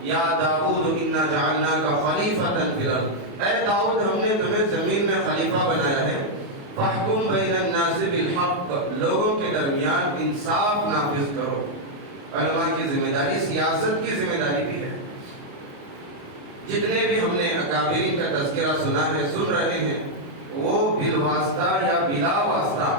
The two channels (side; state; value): left; late; 28 ms